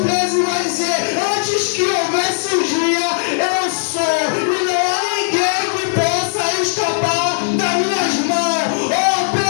13 vai dizer, antes que houvesse o dia, eu sou, e não há ninguém que possa escapar das minhas mãos.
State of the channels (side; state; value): right; silent; digital silence